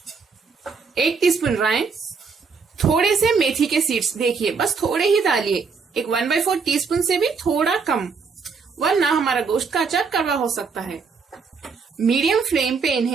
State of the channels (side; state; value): left; quieter; 5.2 dB